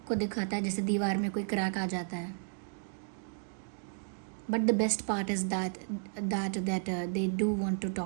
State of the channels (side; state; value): left; silent; digital silence